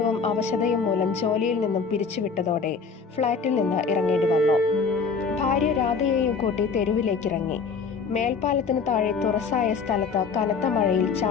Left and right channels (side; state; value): right; quieter; 5.2 dB